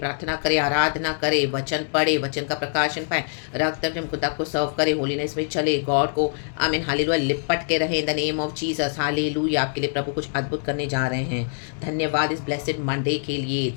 करे, आराधना करे, वचन पढ़े, वचन का प्रकाशन पाए। रक्तम जयम खुदा को सर्व करे, होलीनेस में चले, गॉड को आमीन हालेलुया लिपट के रहे इन the name of Jesus, hallelujah. आपके लिए प्रभु कुछ अद्भुत करने जा रहे हैं। धन्यवाद इस ब्लेसेड मंडे के लिए,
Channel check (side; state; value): right; silent; digital silence